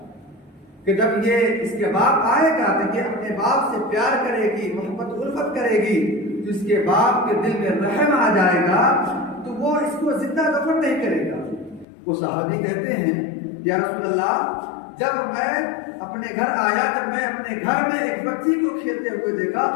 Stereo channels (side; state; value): right; drops out; at 11.9 s